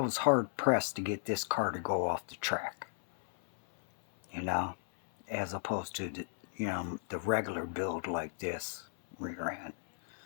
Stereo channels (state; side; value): silent; right; 55 dB below the other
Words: hard pressed to get this car to go off the track. You know, as opposed to the regular build like this rear end.